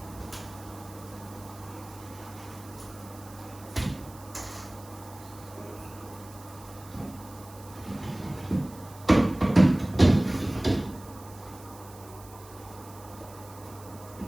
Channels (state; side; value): noise; right; hiss, 21 dB below the sound